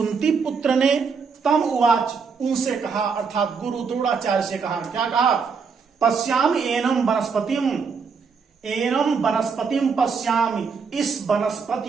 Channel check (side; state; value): left; quieter; 5.5 dB